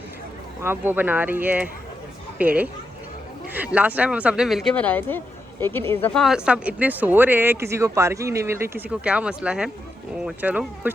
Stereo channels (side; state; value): both; normal; correlation 0.85